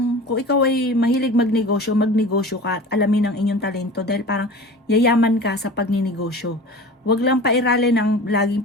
kung ikaw ay mahilig magnegosyo ka at alamin ang inyong talento dahil parang yayaman ka sa pagninegosyo. Huwag lang pairalin ang laging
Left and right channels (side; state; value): both; normal; correlation 0.37